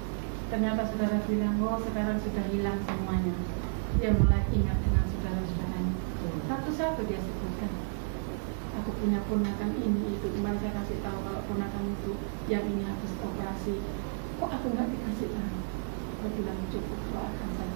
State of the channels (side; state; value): left; silent; digital silence